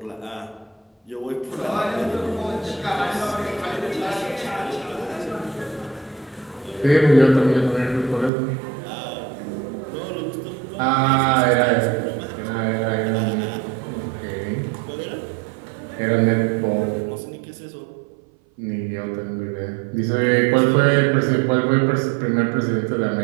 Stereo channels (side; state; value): left; drops out; at 8.3 s